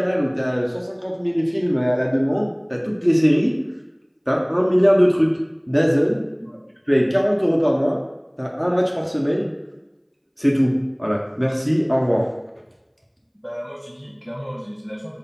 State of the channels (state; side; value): identical; both; correlation 1.00